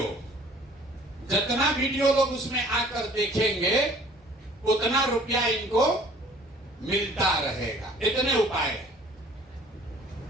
जितना वीडियो लोग उसमें आकर देखेंगे उतना रुपया इनको मिलता रहेगा। इतने उपाय।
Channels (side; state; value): both; normal; correlation 0.53